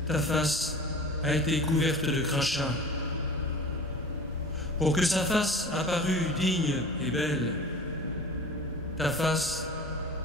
ta face a été couverte de crachats. Pour que sa face apparût digne et belle, ta face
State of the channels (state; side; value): normal; both; correlation 0.39